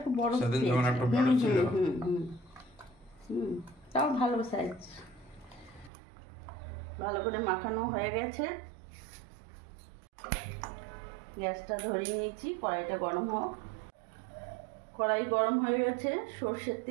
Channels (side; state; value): left; drops out; at 5.9 s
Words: বড় সেদিন যখন একটু বড় ছিল। তাও ভালো সাইজ। ভালো করে মাখানো হয়ে গেছে, গ্যাসটা ধরিয়ে নিয়েছি, কড়াইটা গরম হোক। কড়াই গরম হয়ে গেছে, সর্ষের